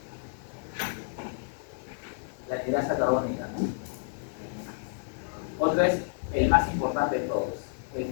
La hidrasa carbónica, ¿no? Otro es el más importante de todos,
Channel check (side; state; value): right; silent; digital silence